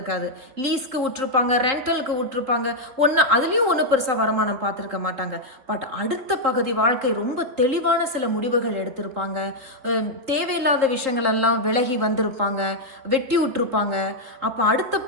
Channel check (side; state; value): left; late; 3.8 ms